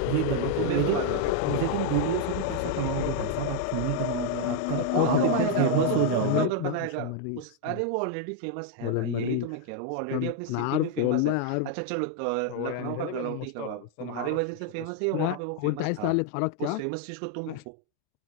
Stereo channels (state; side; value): different; both; correlation 0.00